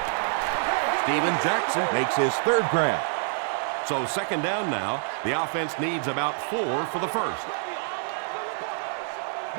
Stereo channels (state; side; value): silent; left; digital silence